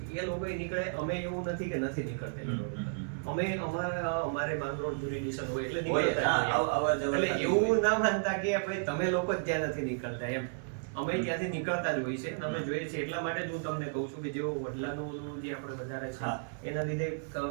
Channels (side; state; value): left; silent; 56 dB below the other